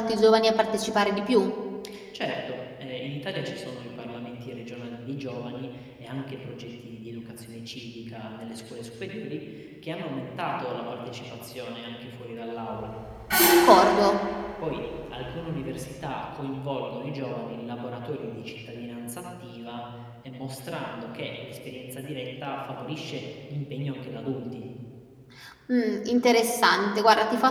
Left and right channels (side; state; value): both; identical; correlation 1.00